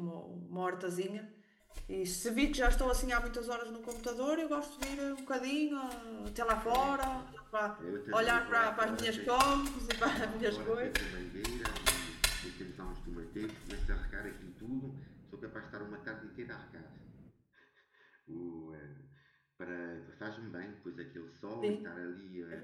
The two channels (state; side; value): identical; both; correlation 1.00